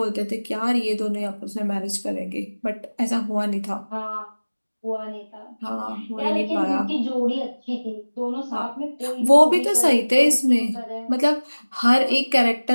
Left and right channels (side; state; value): both; inverted; correlation -1.00